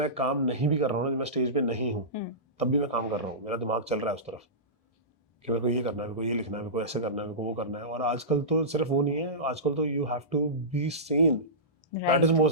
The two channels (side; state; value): both; normal; correlation -0.19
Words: काम नहीं भी कर रहा हूँ ना, जब मैं स्टेज पे नहीं हूँ, तब भी मैं काम कर रहा हूँ. मेरा दिमाग चल रहा है उस तरफ कि मेरे को ये करना है, मेरे को ये लिखना है, मेरे को ऐसे करना है, मेरे को वो करना है. और आजकल तो सिर्फ वो नहीं है, आजकल तो you have to be seen. Right. That is the